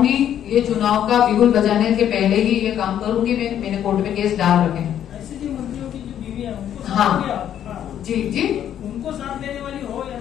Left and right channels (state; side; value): quieter; right; 10.2 dB